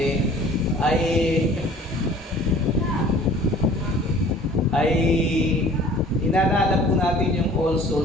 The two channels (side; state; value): both; normal; correlation 0.48